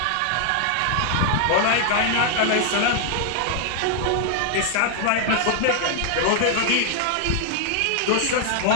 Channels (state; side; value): different; both; correlation 0.00